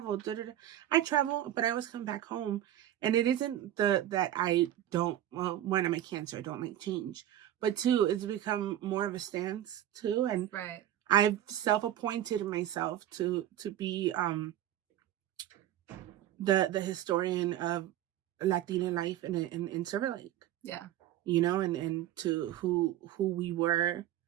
I travel, but I always come back home. And it isn't that I don't, well, one, I'm a Cancer. I don't like change. But two, it's become more of a stance, too. And I've self-appointed myself to be the historian of Latina life in Silver Lake. Yeah. You know, and to who we were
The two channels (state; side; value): quieter; left; 12.3 dB